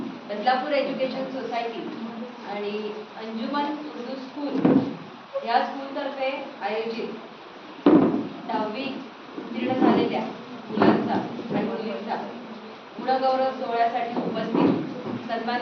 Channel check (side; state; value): both; identical; correlation 1.00